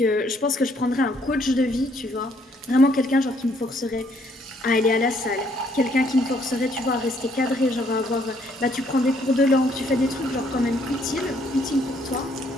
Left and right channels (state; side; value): normal; both; correlation 0.67